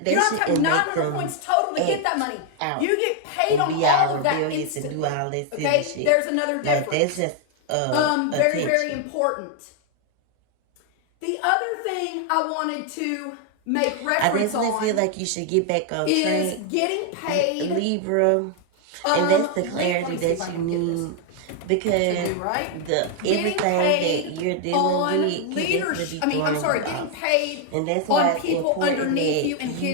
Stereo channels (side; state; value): both; different; correlation 0.01